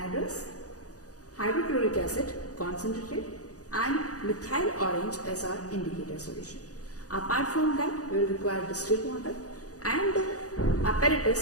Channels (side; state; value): right; late; 0.67 ms